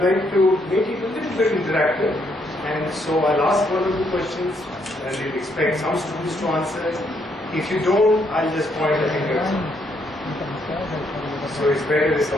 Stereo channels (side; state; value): both; normal; correlation 0.73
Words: like to make it a little bit interactive. And so I'll ask one or two questions and we'll expect some students to answer. If you don't, I'll just point a finger. So it's better if